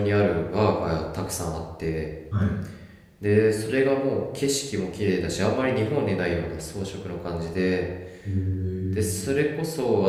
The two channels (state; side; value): identical; both; correlation 1.00